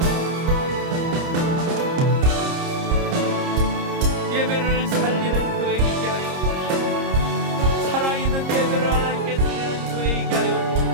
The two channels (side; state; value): left; late; 30 ms